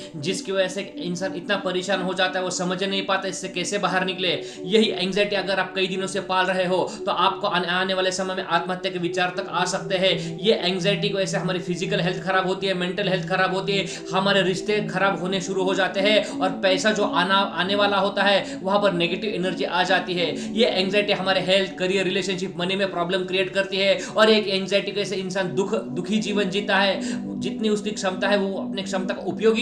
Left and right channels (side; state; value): both; identical; correlation 1.00